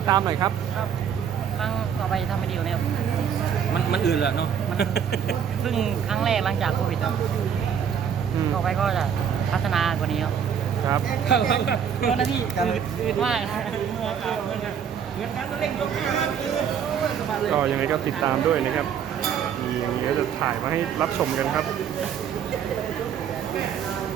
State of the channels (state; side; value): quieter; left; 8.0 dB